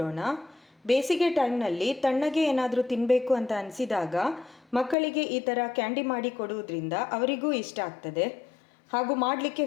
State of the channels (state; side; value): drops out; right; at 5.0 s